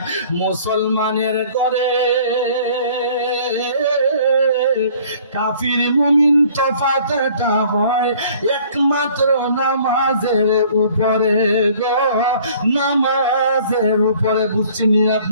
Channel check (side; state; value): both; inverted; correlation -0.54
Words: মুসলমানের ঘরে, কাফির মুমিন তফাতটা হয় একমাত্র নামাজের উপরে গো, নামাজের উপরে। বুঝছেন